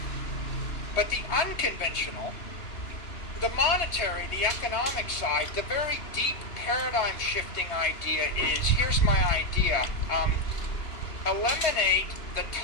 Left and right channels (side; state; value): right; late; 2.9 ms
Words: But the unconventional, the monetary, the economic side, the very deep paradigm shifting idea is, here's my idea, eliminate the